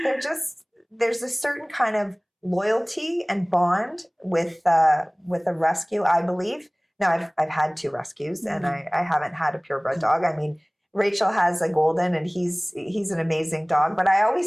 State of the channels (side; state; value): both; identical; correlation 1.00